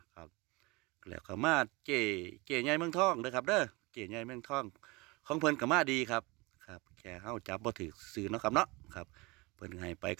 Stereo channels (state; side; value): quieter; left; 24.9 dB